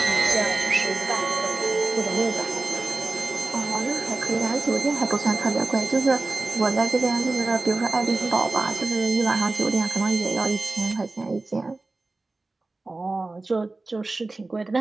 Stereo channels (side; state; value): left; quieter; 3.3 dB